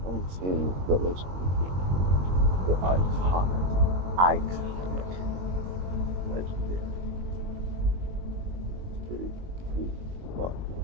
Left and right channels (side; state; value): left; late; 22 ms